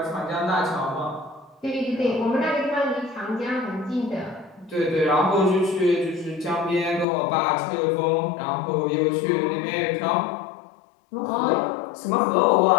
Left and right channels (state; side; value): drops out; right; at 7.1 s